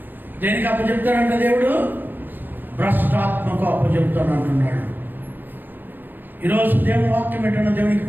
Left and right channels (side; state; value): left; late; 0.091 ms